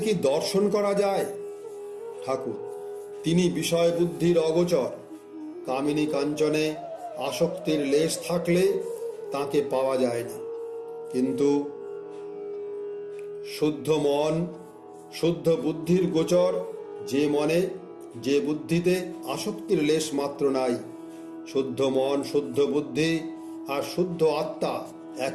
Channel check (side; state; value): both; identical; correlation 1.00